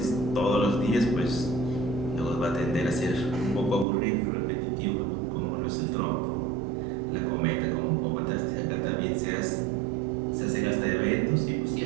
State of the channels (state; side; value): drops out; left; at 3.9 s